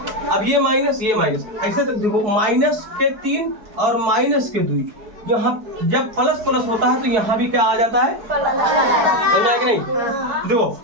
अब ये माइनस, ऐसे तक देखो, माइनस के 3 और माइनस के 2, यहाँ जब प्लस होता है तो यहाँ भी क्या आ जाता है, है कि नहीं। देखो,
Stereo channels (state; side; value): late; left; 4.6 ms